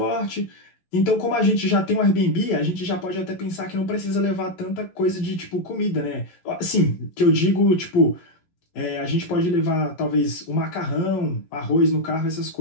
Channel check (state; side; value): late; right; 11 ms